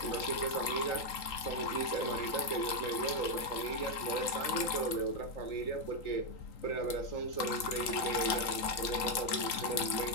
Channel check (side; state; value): right; late; 3.8 ms